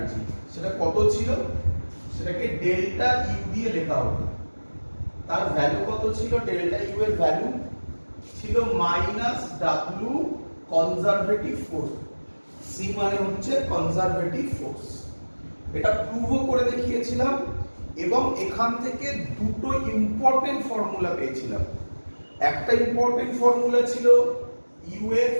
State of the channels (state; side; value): inverted; both; correlation -1.00